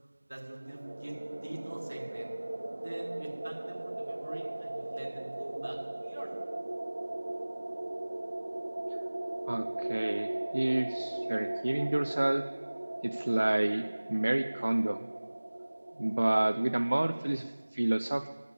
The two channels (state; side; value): inverted; both; correlation -1.00